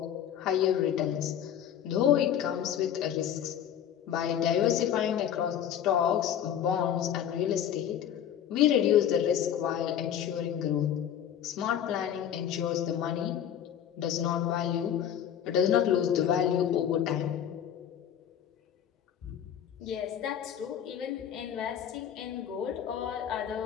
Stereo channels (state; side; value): quieter; right; 9.7 dB